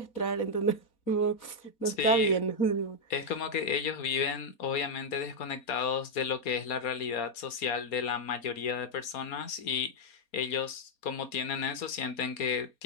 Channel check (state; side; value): late; right; 4.2 ms